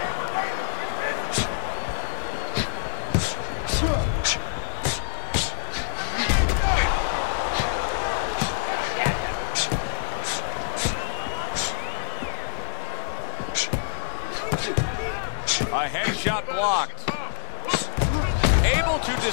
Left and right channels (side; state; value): right; silent; digital silence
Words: A headshot blocked. Able to